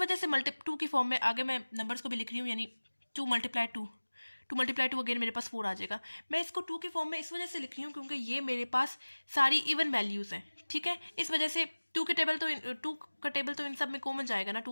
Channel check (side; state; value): both; inverted; correlation -1.00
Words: से 2 की फॉर्म में आगे मैं नंबर्स को भी लिख रही हूँ, यानी 2 × 2, 2 × 2 अगेन मेरे पास 4 आ जाएगा। मैं इसको 2 की फॉर्म में इस वजह से लिख रही हूँ क्योंकि ये मेरे पास सारी इवन वैल्यूज़ हैं, ठीक है। इस वजह से 2 का टेबल तो इन सब में कॉमन जाएगा ना,